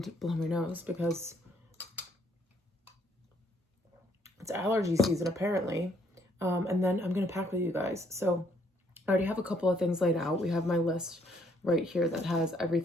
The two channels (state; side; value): normal; both; correlation 0.68